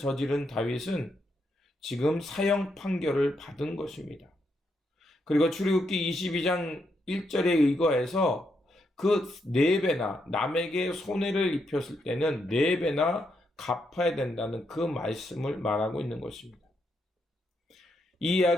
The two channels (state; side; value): normal; both; correlation 0.80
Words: 다윗은 지금 사형 판결을 받은 것입니다. 그리고 출애굽기 22장 1절에 의거해서 그 4배나 남에게 손해를 입혔을 때는 4배나 갚아야 된다는 그 말씀을 말하고 있는 것입니다. 이